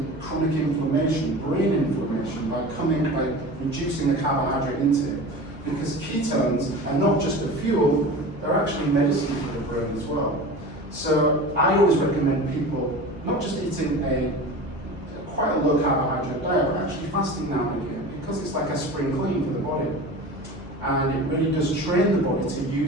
chronic inflammation, brain inflammation, by reducing the carbohydrate intake. Because ketones are not just a fuel, they're actually medicine for the brain as well. So I always recommend people not just eating quite a low carbohydrate diet, but actually fasting now and again, because it's like a spring clean for the body. And it really does train the body to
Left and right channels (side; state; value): both; normal; correlation 0.34